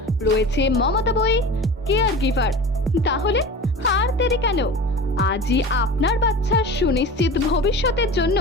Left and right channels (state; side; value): normal; both; correlation 0.34